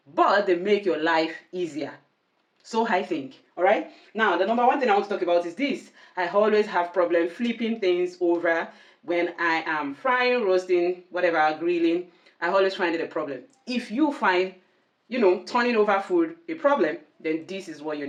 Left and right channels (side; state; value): both; identical; correlation 1.00